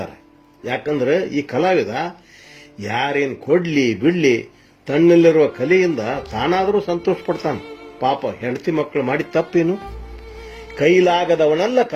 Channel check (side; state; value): both; identical; correlation 1.00